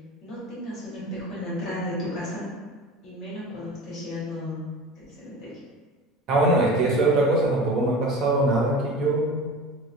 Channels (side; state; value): both; normal; correlation 0.35